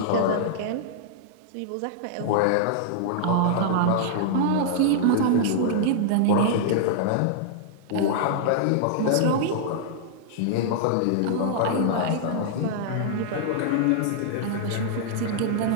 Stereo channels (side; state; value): both; different; correlation -0.01